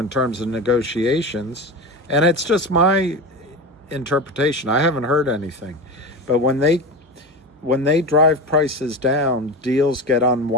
terms of negotiations, and it's just my interpretation. I haven't heard anything, but when they drive prices down, deals get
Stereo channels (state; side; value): normal; both; correlation 0.25